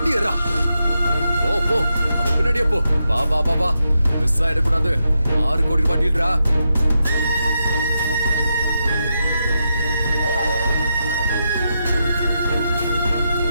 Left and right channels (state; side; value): inverted; both; correlation -0.85